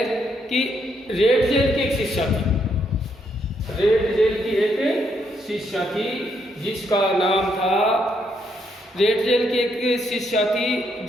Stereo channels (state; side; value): normal; both; correlation 0.75